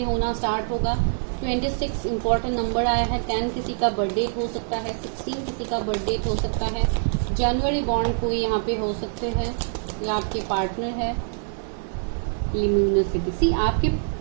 होना स्टार्ट होगा। 26 इंपॉर्टेंट नंबर आया है। 10 किसी का बर्थडे हो सकता है, 16 किसी का बर्थडे हो सकता है, जनवरी बॉन्ड कोई यहाँ पे हो सकते हैं, या आपके पार्टनर है। लिम्यूनसिटी, सी आपके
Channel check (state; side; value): silent; left; digital silence